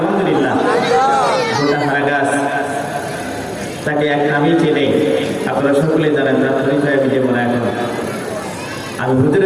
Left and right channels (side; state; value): both; identical; correlation 1.00